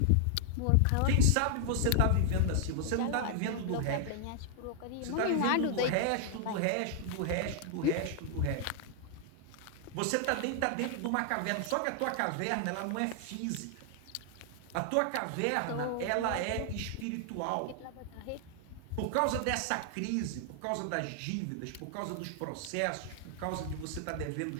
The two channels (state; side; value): different; both; correlation 0.00